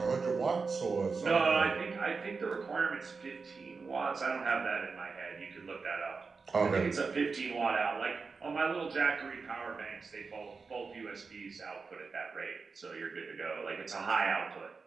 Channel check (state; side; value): quieter; left; 4.7 dB